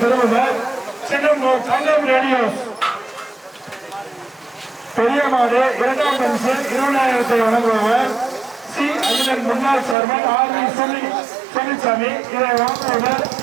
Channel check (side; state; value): left; drops out; at 10.0 s